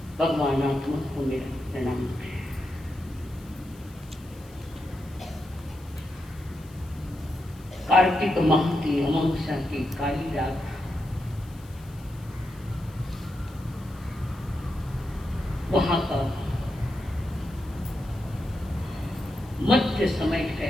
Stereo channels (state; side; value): noise; left; hiss, 25 dB below the sound